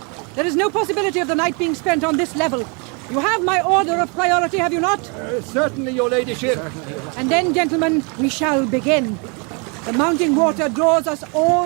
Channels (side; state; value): left; quieter; 33.9 dB